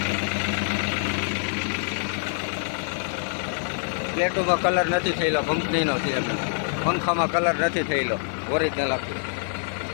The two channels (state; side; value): silent; right; 58 dB below the other